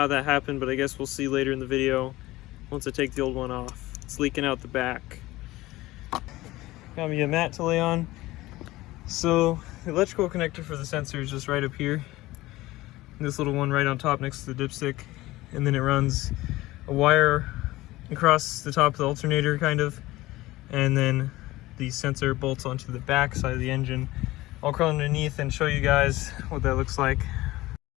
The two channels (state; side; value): quieter; right; 18.2 dB